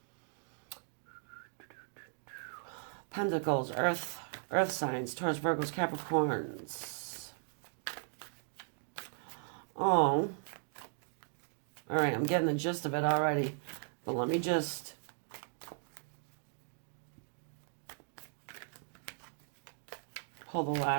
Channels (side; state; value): left; silent; digital silence